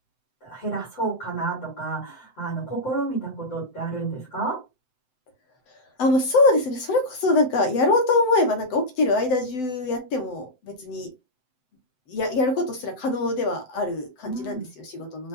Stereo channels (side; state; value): right; late; 7.8 ms